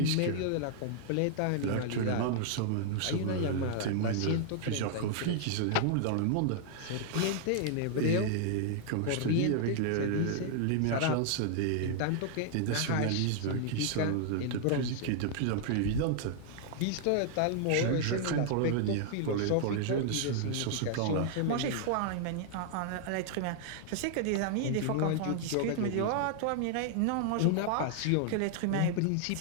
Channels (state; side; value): different; both; correlation -0.01